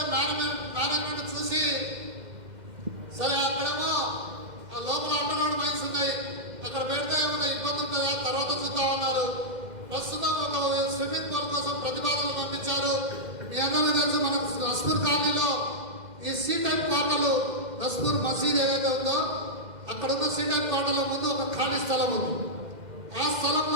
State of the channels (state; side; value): late; left; 2.1 ms